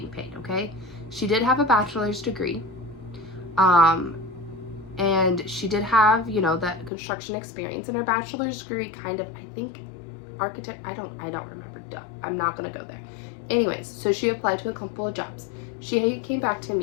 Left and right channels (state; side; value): drops out; right; at 6.9 s